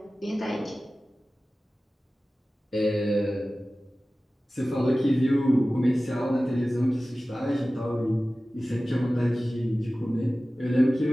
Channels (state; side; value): normal; both; correlation 0.96